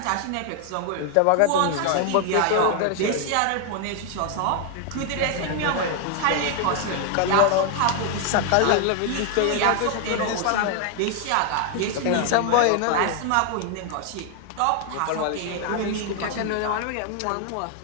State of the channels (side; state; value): both; different; correlation 0.00